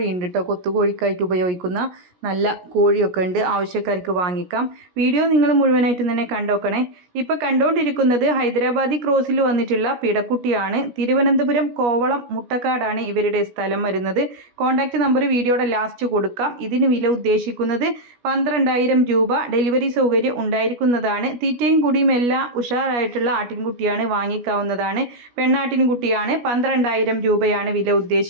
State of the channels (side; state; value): left; late; 17 ms